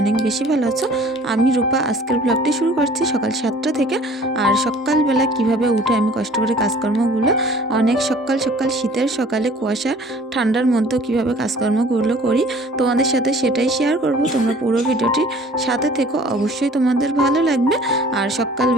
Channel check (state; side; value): normal; both; correlation 0.50